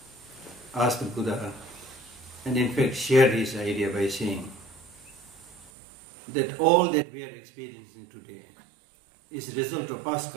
asked the Buddha, and in fact shared his idea by saying that all that we are experiencing today is a result of past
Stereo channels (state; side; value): drops out; left; at 5.7 s